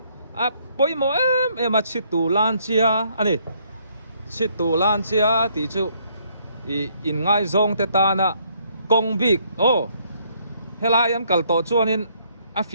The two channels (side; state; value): both; inverted; correlation -0.68